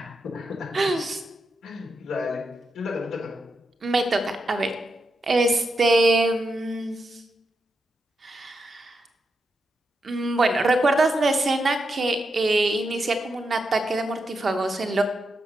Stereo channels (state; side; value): normal; both; correlation 0.85